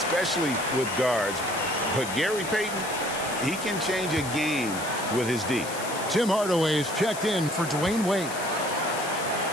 with guards. But Gary Payton, he can change a game with his D. Tim Hardaway is checked in for Dwayne Wade.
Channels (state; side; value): noise; left; hiss, 10 dB below the sound